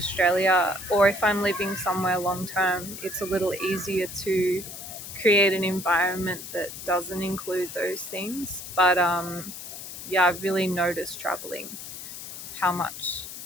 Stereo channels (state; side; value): noise; left; hiss, 10 dB below the sound